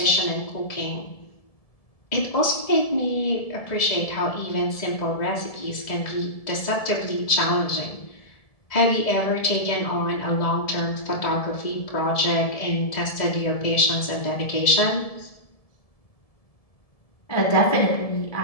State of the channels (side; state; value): right; late; 1.7 ms